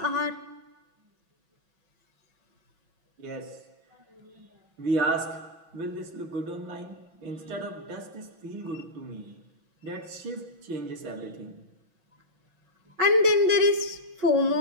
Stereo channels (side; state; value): left; late; 6.0 ms